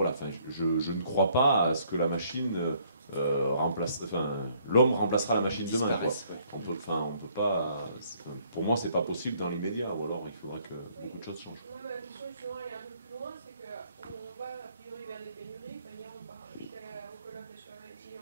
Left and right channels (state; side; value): inverted; both; correlation -0.65